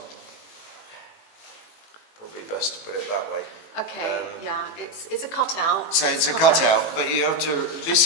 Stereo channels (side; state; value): right; late; 19 ms